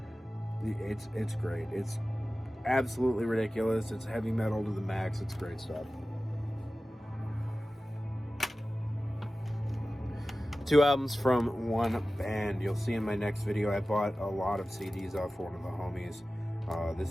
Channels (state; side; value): normal; both; correlation 0.96